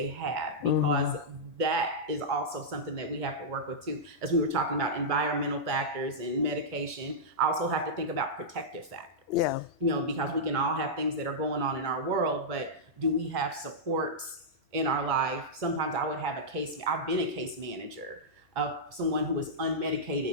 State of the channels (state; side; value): normal; both; correlation -0.11